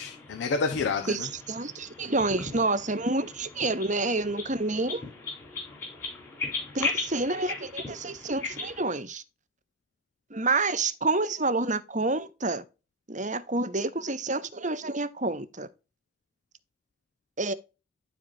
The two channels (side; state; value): both; normal; correlation 0.03